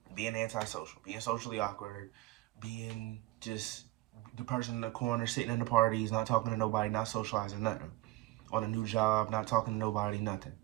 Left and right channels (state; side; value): quieter; left; 19.1 dB